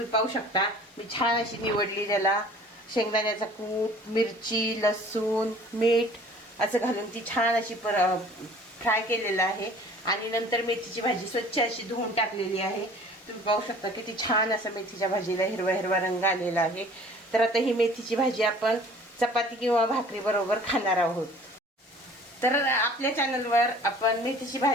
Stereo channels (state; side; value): normal; both; correlation 0.49